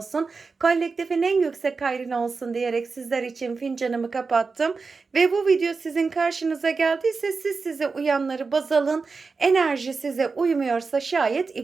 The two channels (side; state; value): left; quieter; 4.5 dB